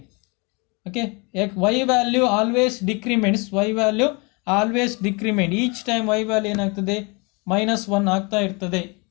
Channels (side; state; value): right; quieter; 29.8 dB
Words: Okay, y value always decrements. Y value always decrement. Each time y value ಏನಾಗ್ತದೆ, -1 ಆಗ್ತಾ ಇರ್ತದೆ.